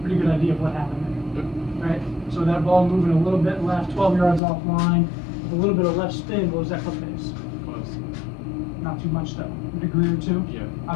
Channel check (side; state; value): right; drops out; at 4.4 s